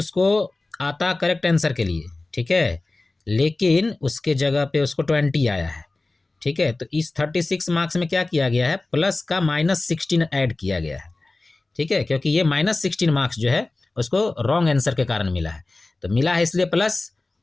आता करेक्ट आंसर के लिए, ठीक है, लेकिन उसके जगह पे उसको 20 आया है। ठीक है, तो इस 36 मार्क्स में क्या किया गया है, प्लस का माइनस 16 ऐड किया गया है। ठीक है, क्योंकि ये माइनस 16 मार्क्स जो है उसको रॉन्ग आंसर के कारण मिला है, तो मिला है इसलिए प्लस,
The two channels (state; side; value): quieter; right; 3.2 dB